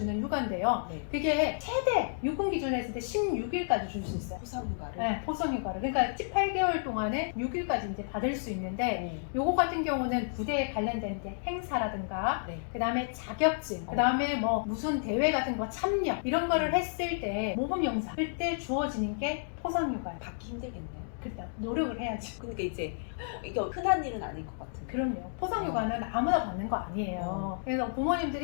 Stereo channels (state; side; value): silent; right; digital silence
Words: 휴가인데요. 그게 최대 육군 기준으로 했을 때 16일까지 줄 수 있어요. 포상휴가를. 네, 포상휴가를. 그러니까 18개월 동안에 6일까지 이제 받을 수 있는데 요거 같은 경우는 부대에 관련된 이제 행사라든가 그 다음에 자격증, 그 다음에 뭐 무슨 대회 같은 거 참여 이런 거를 했을 때 모범영사 그때 주어지는 게 포상휴가예요. 받기 힘들겠네요. 그때 노력을 해야지. 그러니까 이제 이게 흔한 일은 아닐 것 같은데. 그럼요. 포상휴가는 아무나 받는 거 아니에요. 그래서